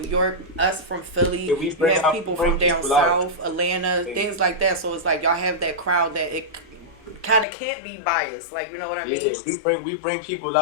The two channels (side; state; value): right; drops out; at 7.5 s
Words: New York, us from Philly. You have people from down south, Atlanta, things like that. So it's like y'all have that crowd that it kind of can't be biased, like, you know what I mean? We bring people